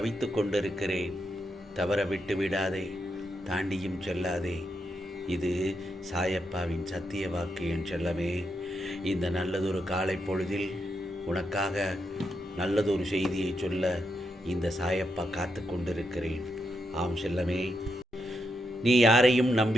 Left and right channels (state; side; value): normal; both; correlation 0.83